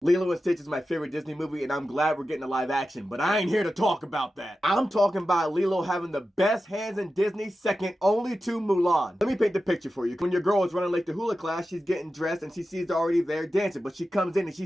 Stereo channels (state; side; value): normal; both; correlation 0.92